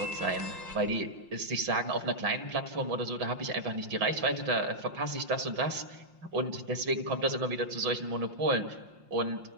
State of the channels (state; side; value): late; left; 5.6 ms